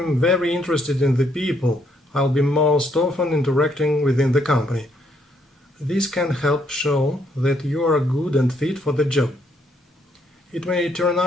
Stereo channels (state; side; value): normal; both; correlation 0.72